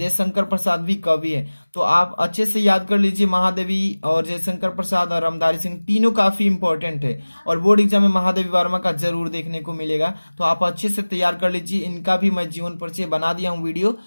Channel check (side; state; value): both; inverted; correlation -1.00